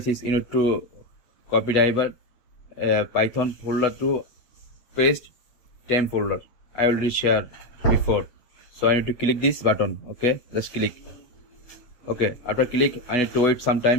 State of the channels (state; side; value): late; right; 8.1 ms